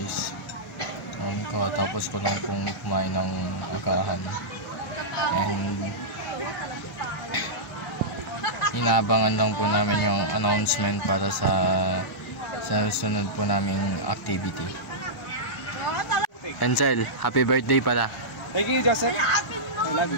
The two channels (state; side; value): normal; both; correlation -0.12